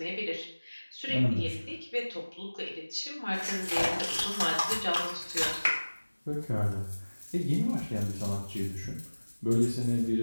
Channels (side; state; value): both; inverted; correlation -1.00